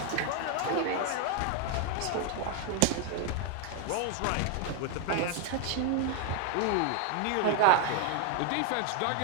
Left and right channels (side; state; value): both; different; correlation 0.01